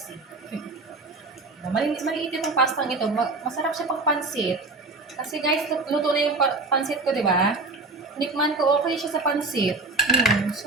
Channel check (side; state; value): left; quieter; 3.4 dB